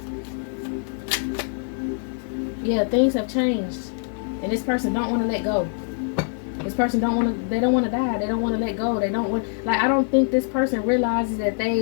Yeah, things have changed, and this person don't want to let go. This person don't want to. They don't want to die. They don't want to let go. They don't want. Like, I don't think this person realizes that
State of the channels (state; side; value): silent; right; 63 dB below the other